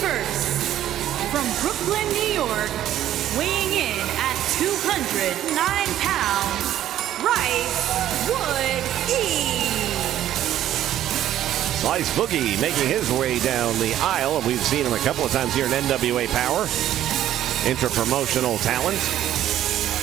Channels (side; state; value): left; quieter; 12.1 dB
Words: from Brooklyn, New York, weighing in at 209 pounds, Bryce Wood-E. Slice Boogie making his way down the aisle. We've seen him a couple of times here in NWA Power. Inter-promotional talent.